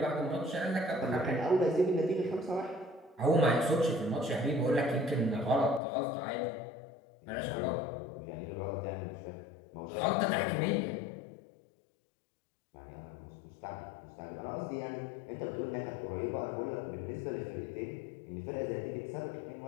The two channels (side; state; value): right; drops out; at 5.8 s